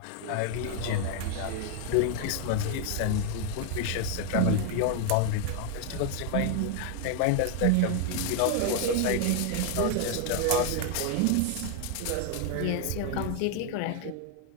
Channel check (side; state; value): both; different; correlation 0.00